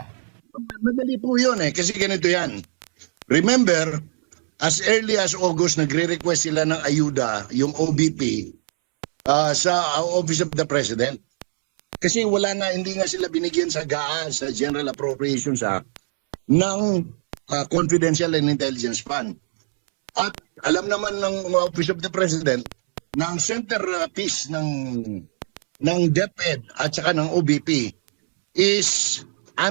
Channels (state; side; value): silent; left; 64 dB below the other